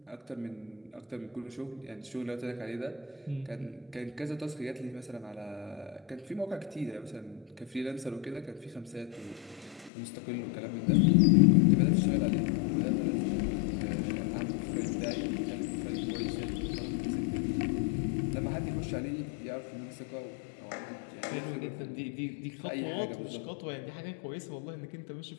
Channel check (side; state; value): right; drops out; at 9.9 s